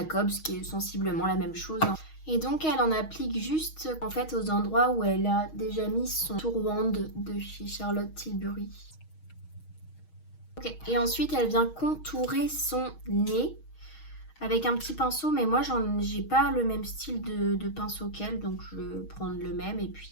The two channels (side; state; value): right; late; 6.3 ms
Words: qui est sensiblement la même chose. Et donc, elle en applique juste en fait aux endroits où elle a déjà mis son tourwand de chez Charlotte Tilbury. Ok. Et ensuite, elle vient contourer son nez avec un petit pinceau, mais moi j'ai pas le même style de pinceau qu'elle, donc je vais prendre le même et